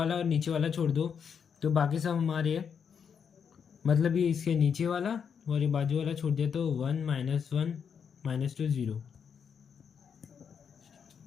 और नीचे वाला छोड़ दो, तो बाकी सब हमारे है। मतलब ये इसके नीचे वाला और ये बाजू वाला छोड़ दिया, तो 1 -1 -2 0।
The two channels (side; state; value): right; quieter; 7.0 dB